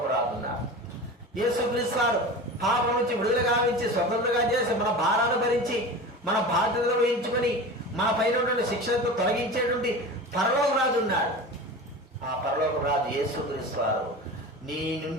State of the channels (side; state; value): both; normal; correlation 0.32